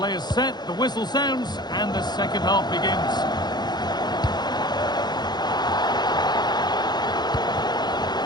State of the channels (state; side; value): late; right; 0.21 ms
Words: players set, the whistle sounds, and the second half begins.